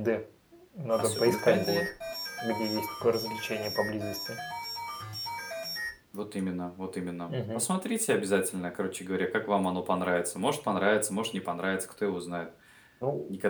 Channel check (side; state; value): both; identical; correlation 1.00